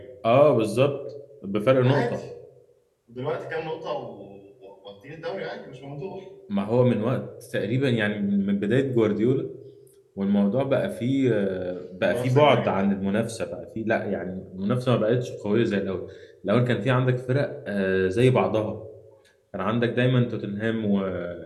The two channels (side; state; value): both; identical; correlation 1.00